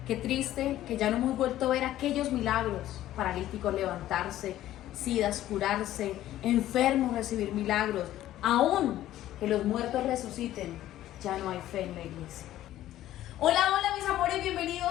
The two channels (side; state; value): right; quieter; 13.6 dB